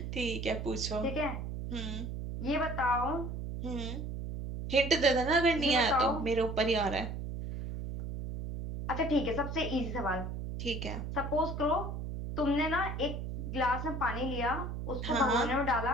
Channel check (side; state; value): right; noise; hum, 5 dB below the sound